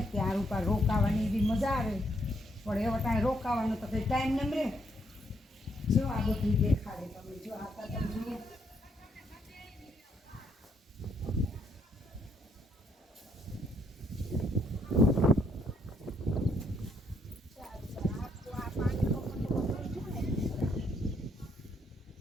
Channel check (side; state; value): both; normal; correlation 0.73